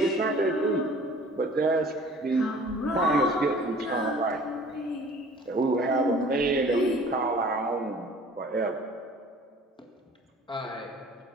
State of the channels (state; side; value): normal; both; correlation 0.49